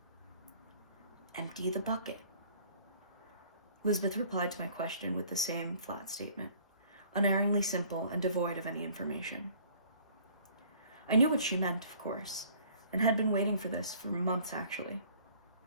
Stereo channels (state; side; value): inverted; both; correlation -0.55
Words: Empty the bucket. Lisbeth replied to my question with the same flat statement, unerringly simple and devoid of any information. I knew what she meant, of course, and had been waiting for this for months, actually.